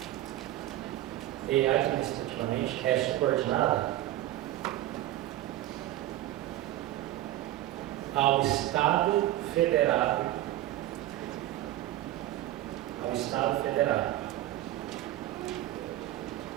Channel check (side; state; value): left; quieter; 14.7 dB